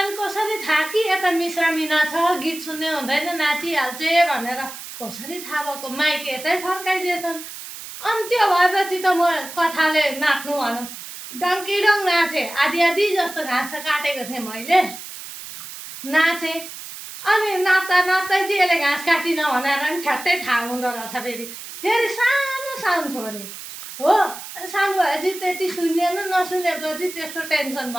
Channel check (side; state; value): right; noise; hiss, 12 dB below the sound